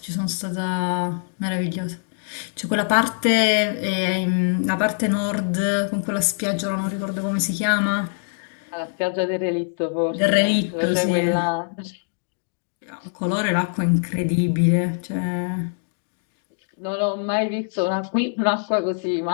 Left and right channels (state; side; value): silent; right; digital silence